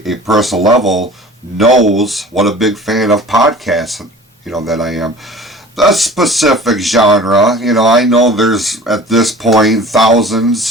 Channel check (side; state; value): both; normal; correlation 0.43